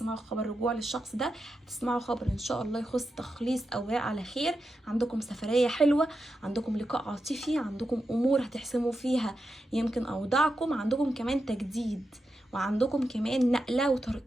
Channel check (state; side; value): normal; both; correlation 0.88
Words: خبر رجوع للشخص ده، تسمعوا خبر ان شاء الله يخص تخليص اوراق على خير، عندكم سفريه حلوه، عندكم لقاء عاطفي، عندكم امور هتحسموا فيها يمكن اوضاعكم، عندكم كمان تجديد، وعندكم كمان نقله